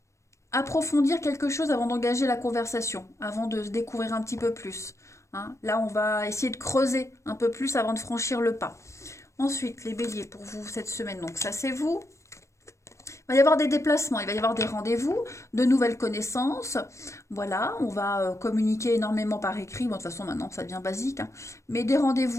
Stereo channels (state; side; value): late; right; 0.14 ms